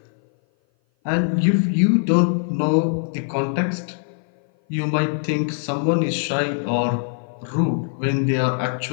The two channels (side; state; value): right; silent; 57 dB below the other